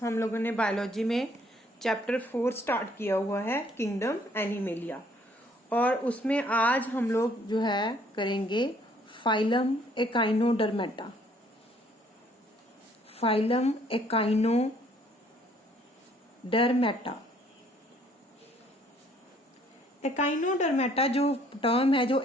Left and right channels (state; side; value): normal; both; correlation 0.62